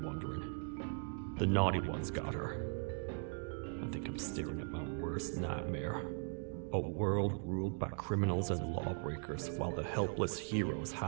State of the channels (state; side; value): silent; left; 52 dB below the other